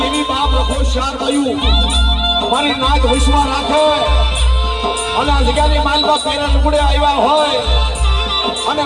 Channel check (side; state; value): both; identical; correlation 1.00